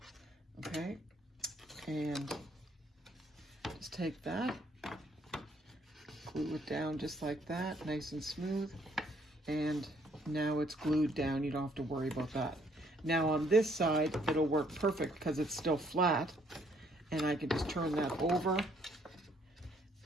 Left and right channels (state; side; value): normal; both; correlation 0.67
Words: Okay, and just take that, glue it down just like that, nice and smooth, and now it's glued down. You don't have to worry about that. Now on this side, it'll work perfect because it's still flat, and I can just turn that over